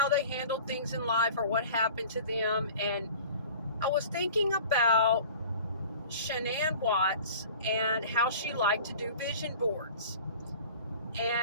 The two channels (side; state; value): both; inverted; correlation -0.43